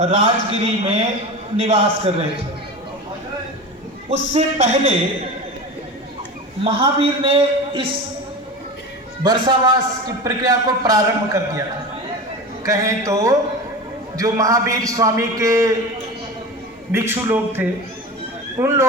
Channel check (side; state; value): both; normal; correlation 0.29